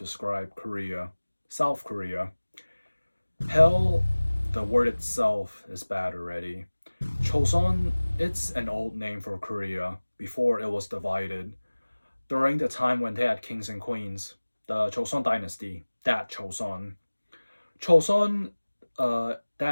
Korea, South Korea. Hell, the word itself is bad already. Choson, it's an old name for Korea before it was divided. During the time when they had kings and queens, the Choson dynasty, that Choson. Choson,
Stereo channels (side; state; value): both; inverted; correlation -1.00